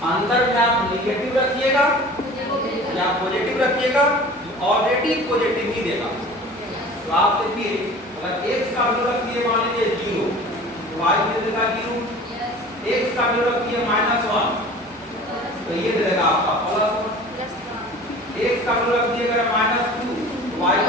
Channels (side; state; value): right; noise; hum, 29 dB below the sound